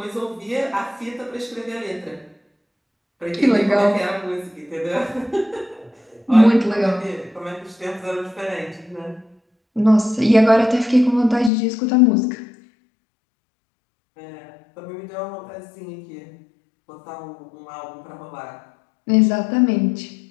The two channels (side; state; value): right; drops out; at 11.5 s